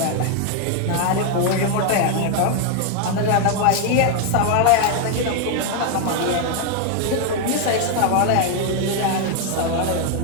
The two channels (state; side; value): different; both; correlation 0.00